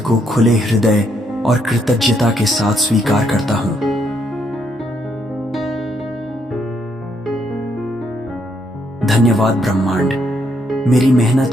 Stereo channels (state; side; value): normal; both; correlation 0.74